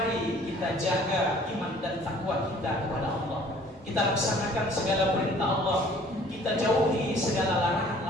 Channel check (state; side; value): normal; both; correlation 0.54